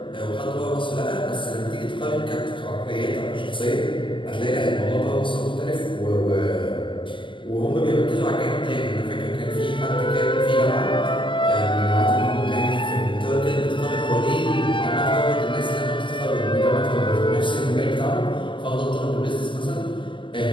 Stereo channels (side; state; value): right; late; 0.24 ms